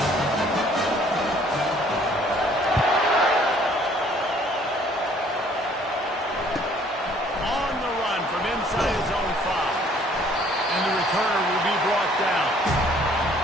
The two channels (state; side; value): normal; both; correlation 0.59